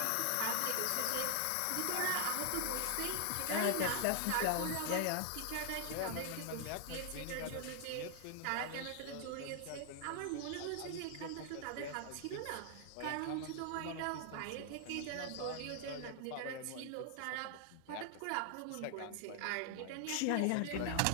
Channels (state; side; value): different; both; correlation 0.00